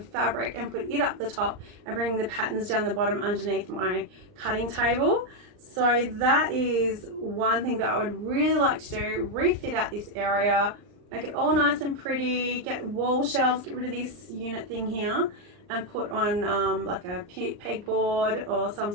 and put it up the top and bring the patterns down the bottom underneath my cutting table. So that is one thing that I would really like to do, refit out this area, make it all nice and pretty, get wall shelves, get rid of this unit thing here and put on like a pegboard or some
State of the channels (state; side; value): late; left; 39 ms